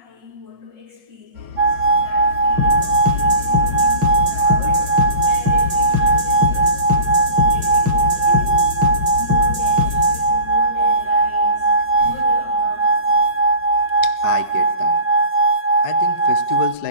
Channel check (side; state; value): left; late; 5.4 ms